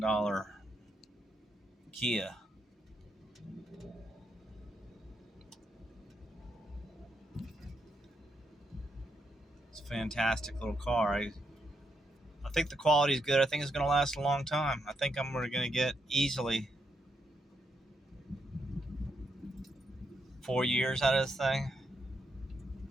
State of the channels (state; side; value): normal; both; correlation 0.79